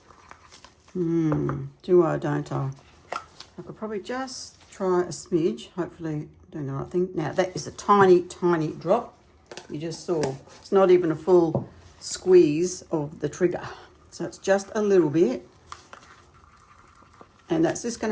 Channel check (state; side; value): identical; both; correlation 1.00